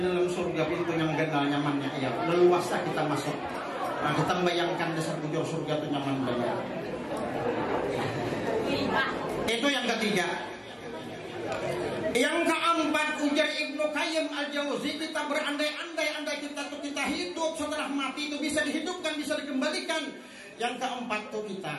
dalam surga pintu yang genal nyamannya. Ya, leluasa kita masuk. Nah, kita membayangkan dasar bujur surga itu nyaman banget. Itu yang ketiga. Yang keempat, ujar Ibnu Qayyim Al-Jauzi, kita berandai-andai kita hidup setelah mati itu bisa dihidupkan, bisa dikembalikan. Yang keempat tuh kita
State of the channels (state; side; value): identical; both; correlation 1.00